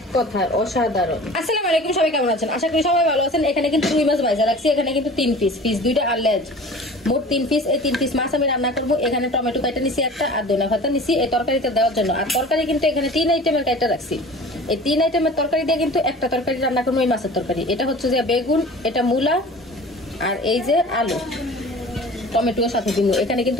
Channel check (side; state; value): both; normal; correlation 0.42